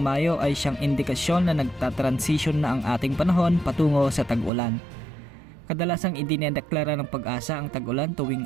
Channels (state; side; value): drops out; left; at 4.5 s